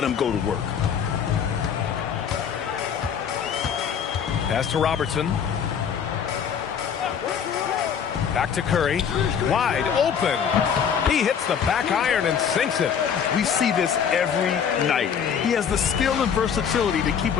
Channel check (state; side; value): quieter; right; 7.6 dB